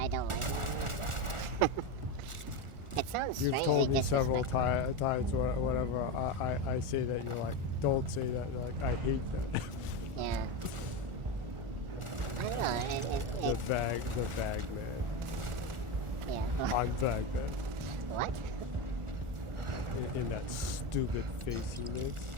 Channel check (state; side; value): late; left; 1.4 ms